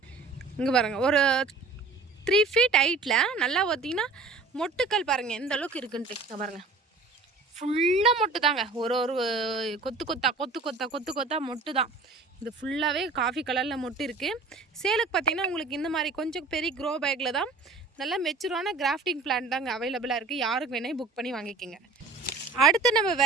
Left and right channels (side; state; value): left; quieter; 3.9 dB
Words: இங்கே பாருங்கள், ஒரு 3 feet ஹைட்டில் நல்லா பார்த்திங்கன்னா மொட்டுக்கள் பாருங்கள் எந்த அளவுக்கு இருக்குன்ட்டு. இங்கே பாருங்கள், ஃபுல்லாக மொட்டு தாங்க. ஒரு கொத்து கொத்தா மொட்டு தான். இது ஃபுல்லாகவே காஃபி கலரில் மொட்டு இருக்குது. சேலுக்கு பார்த்திங்கன்னா உங்களுக்கு இந்த மாதிரி கொஞ்சம் பெரிய க்ரோ பேக்கில் தான் நல்லா மெச்சூரான கிராஃப்டிங் பிளான்ட் தாங்க அவைலபிளாக இருக்குது. யாருக்கு வேணால் புக் பண்ணி வாங்கிக்கோங்க. அடுத்து நம்ம